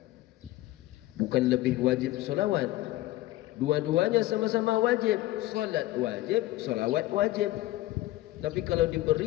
Bukan lebih wajib salawat. Dua-duanya sama-sama wajib. Salat wajib, salawat wajib. Tapi kalau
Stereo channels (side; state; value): right; quieter; 16.7 dB